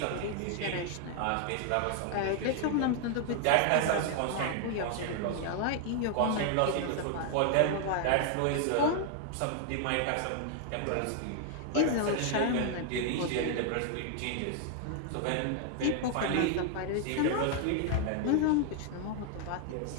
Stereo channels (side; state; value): both; different; correlation 0.00